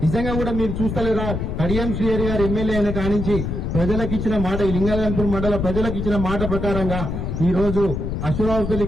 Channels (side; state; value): left; noise; rumble, 3 dB below the sound